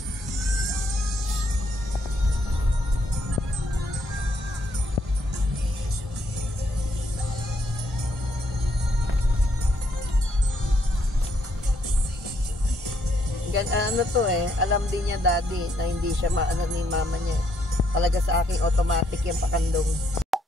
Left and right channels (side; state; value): both; normal; correlation 0.72